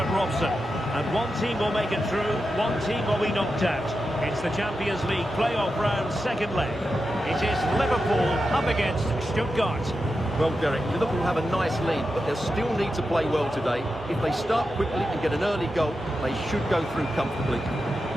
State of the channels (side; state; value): both; normal; correlation 0.89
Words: Robson. And one team will make it through, one team will be knocked out. It's the Champions League playoff round second leg. It is Liverpool up against Stuttgart. Well, Derek, Liverpool have a nice lead, but they'll still need to play well today. If they start quickly and get an early goal, they should go through comfortably.